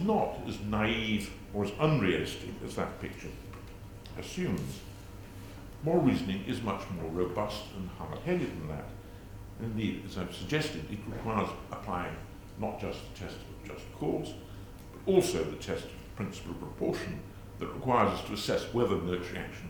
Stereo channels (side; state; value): both; identical; correlation 1.00